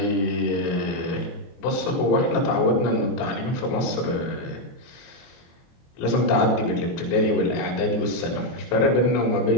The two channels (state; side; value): late; right; 24 ms